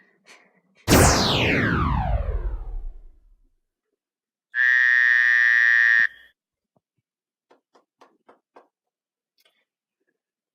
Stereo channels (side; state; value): both; identical; correlation 1.00